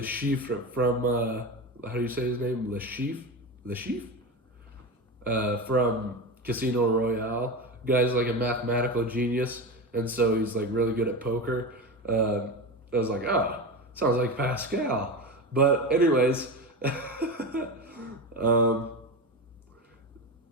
Chiffre from how do you say his name? Le Chiffre from Casino Royale. Guy's like a mathematical genius, and so he's like really good at poker. I was like, sounds like Pascal. But anyways,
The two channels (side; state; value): both; normal; correlation 0.23